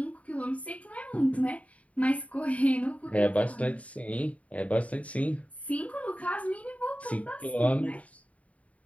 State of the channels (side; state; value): right; late; 0.067 ms